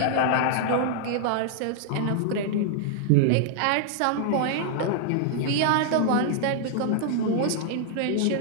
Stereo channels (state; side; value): different; both; correlation -0.01